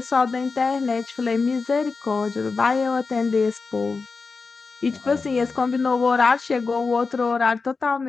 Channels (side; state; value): right; quieter; 4.4 dB